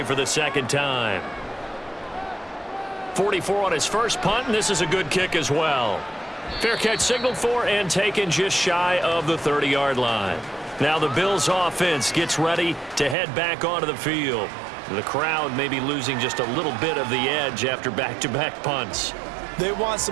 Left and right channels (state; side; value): drops out; left; at 13.2 s